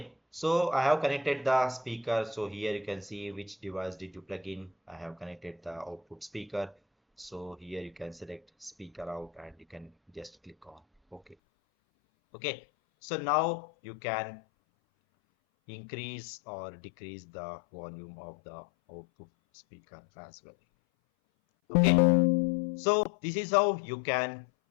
so I have connected the speaker. So here you can see which device did you plug in. I have connected the output speaker. So here you can select speaker out and you can just click on OK. Okay, so now you can increase or decrease the volume of the output speaker as well. Okay, so this is how you can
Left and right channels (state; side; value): drops out; right; at 11.4 s